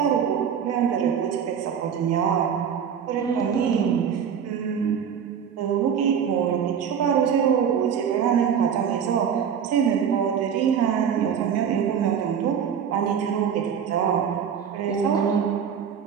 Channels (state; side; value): quieter; left; 7.9 dB